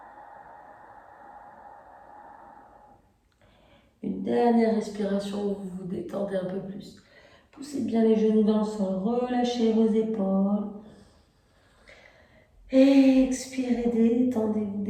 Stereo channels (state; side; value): identical; both; correlation 1.00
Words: Une dernière respiration où vous vous détendez un peu plus. Poussez bien les genoux dans le sol, relâchez vos épaules. Expirez,